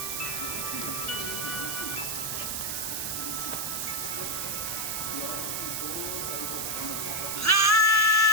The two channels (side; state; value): right; noise; hiss, 1 dB below the sound